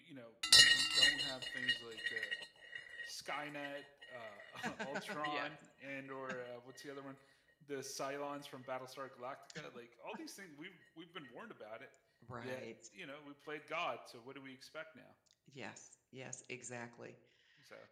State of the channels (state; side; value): identical; both; correlation 1.00